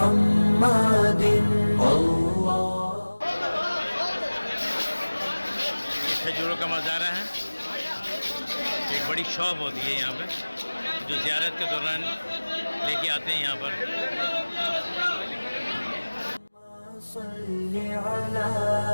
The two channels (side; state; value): both; inverted; correlation -1.00